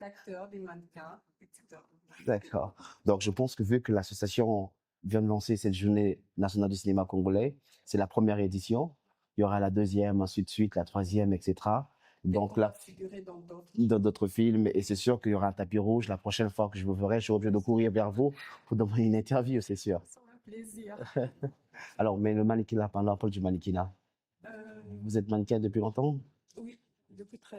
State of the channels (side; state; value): both; identical; correlation 1.00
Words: d'acteurs, des mannequins, etc. D'accord. Donc, je pense que vu que l'association vient de lancer cette journée nationale du cinéma congolais, c'est la première édition. Il y aura la deuxième, ensuite de suite, la troisième, etc. Donc On là, va figurer dans d'autres. dans d'autres films, et c'est sûr qu'il y aura un tapis rouge. La prochaine fois que je vous verrai, je serai obligé de courir vers vous pour demander une interview, c'est sûr. Ça fait plaisir. Alors, mais le mannequinat, parlons un peu du mannequinat. Euh, Vous êtes mannequin depuis longtemps? oui, depuis